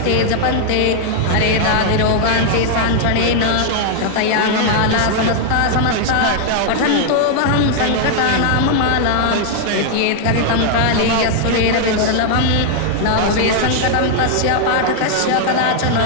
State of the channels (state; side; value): different; both; correlation 0.00